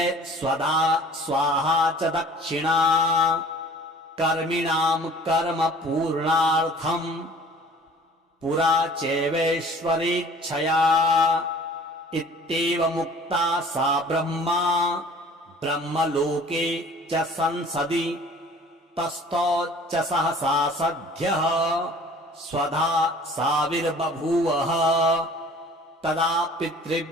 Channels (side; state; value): both; normal; correlation 0.48